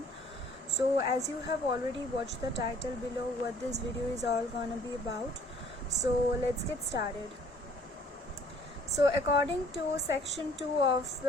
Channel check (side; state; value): both; normal; correlation 0.56